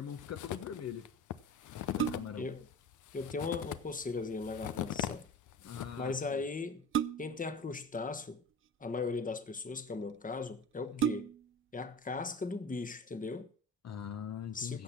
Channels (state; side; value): normal; both; correlation 0.35